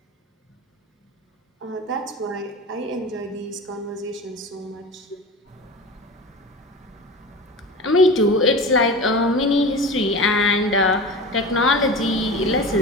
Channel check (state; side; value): normal; both; correlation 0.32